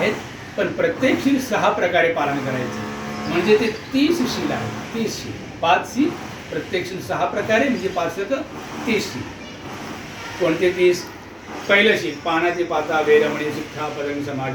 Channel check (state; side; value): identical; both; correlation 1.00